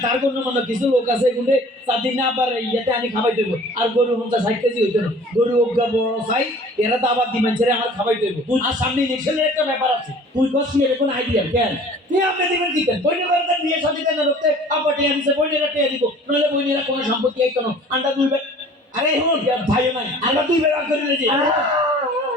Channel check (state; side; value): normal; both; correlation 0.48